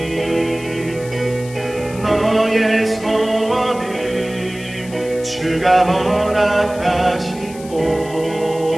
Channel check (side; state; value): left; noise; hiss, 18 dB below the sound